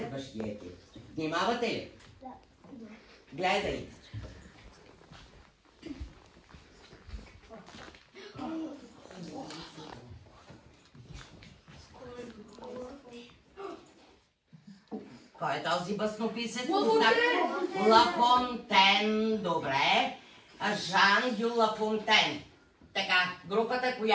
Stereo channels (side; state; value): both; identical; correlation 1.00